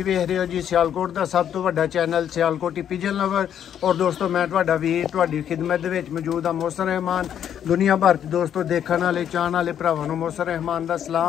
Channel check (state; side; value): quieter; right; 9.5 dB